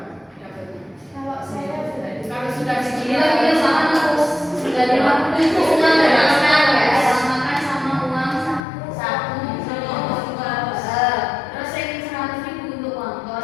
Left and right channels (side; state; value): right; drops out; at 8.6 s